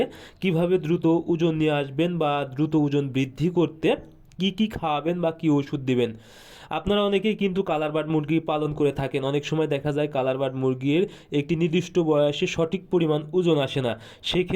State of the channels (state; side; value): identical; both; correlation 1.00